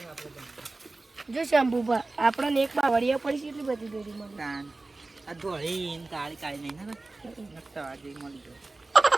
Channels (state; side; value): quieter; left; 3.3 dB